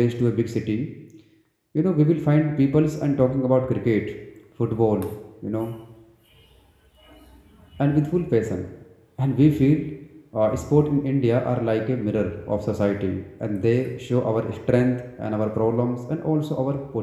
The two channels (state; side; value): identical; both; correlation 1.00